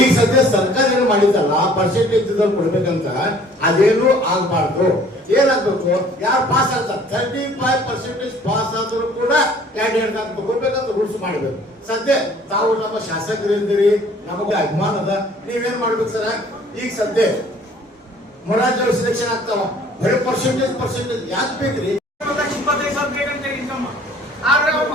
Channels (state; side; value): normal; both; correlation 0.54